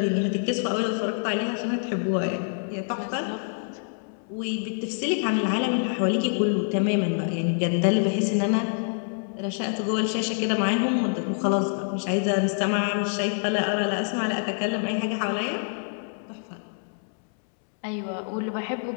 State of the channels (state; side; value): silent; right; 61 dB below the other